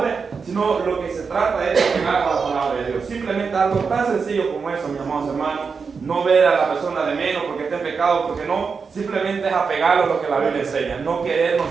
sino lo que se trata es de pegar a la palabra de Dios. Simplemente algo tan sencillo como eso, mis amados hermanos. No ver a la persona de menos porque está en pecado, porque no, simplemente es apegarlo a lo que la Biblia enseña. No querer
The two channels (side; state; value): left; quieter; 5.4 dB